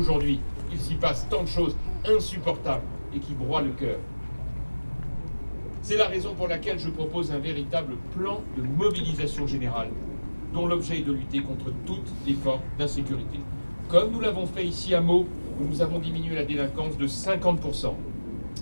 il s'y passe tant de choses insupportables et qui broient le cœur. C'est la raison pour laquelle je propose un véritable plan de mobilisation générale, dont l'objet est de lutter contre toutes les formes d'insécurité. Comme nous l'avons fait ici à Meaux, où nous avons diminué la délinquance de 50%.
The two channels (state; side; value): inverted; both; correlation -1.00